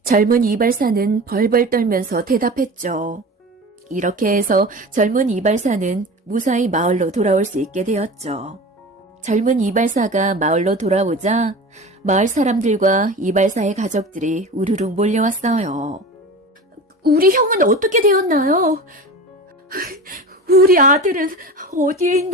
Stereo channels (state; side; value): normal; both; correlation 0.33